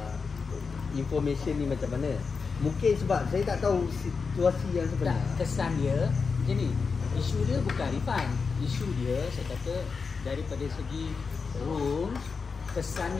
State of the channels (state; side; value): quieter; right; 5.1 dB